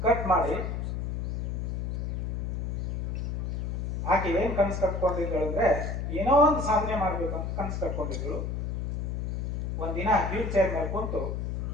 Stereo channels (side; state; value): left; noise; hum, 2 dB below the sound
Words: ಕಟ್ ಮಾಡಿ ಆಕೆ ಏನ್ ಕನಸು ಕಟ್ಕೊಂಡಿದ್ದಳು ಅಂದ್ರೆ ಏನೋ ಒಂದು ಸಾಧನೆ ಮಾಡ್ಬೇಕು ಅಂತ ಕನಸು ಕಟ್ಕೊಂಡಿದ್ರು. ಒಂದಿನ ವೀಲ್ ಚೇರ್ ಮೇಲೆ ಕುಂತು